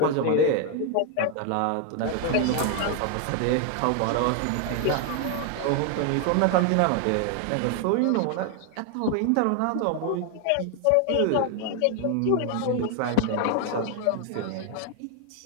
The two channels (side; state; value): both; different; correlation 0.00